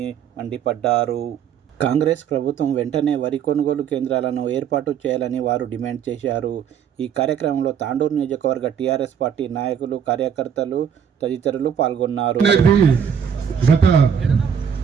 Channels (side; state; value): left; quieter; 7.9 dB